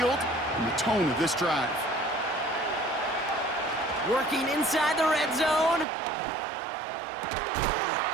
and the tone of this drive. Working inside the red zone.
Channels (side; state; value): left; drops out; at 5.9 s